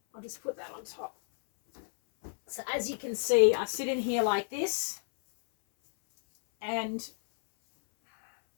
just put that on top. So as you can see, I sit in here like this, and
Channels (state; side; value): silent; right; 57 dB below the other